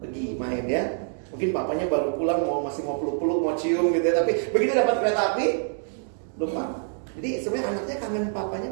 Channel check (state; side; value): silent; left; 61 dB below the other